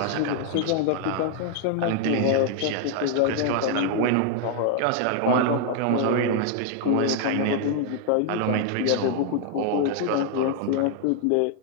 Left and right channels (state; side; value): different; both; correlation 0.00